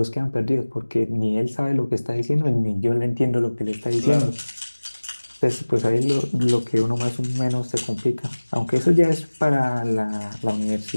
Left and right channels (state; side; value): inverted; both; correlation -1.00